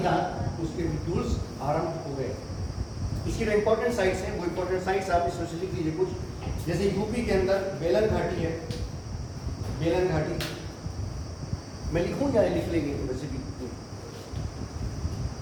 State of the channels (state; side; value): identical; both; correlation 1.00